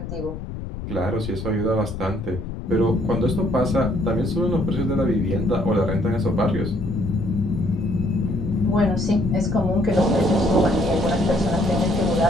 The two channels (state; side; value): noise; left; rumble, 8 dB below the sound